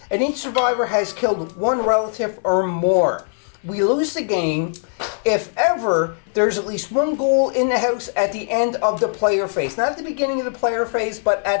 and each survivor has killed one relative or more. We lose the game if ever there's at least one ghoul in the house at the end of the player phase. Not at the beginning of the player phase, but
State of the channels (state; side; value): silent; right; 61 dB below the other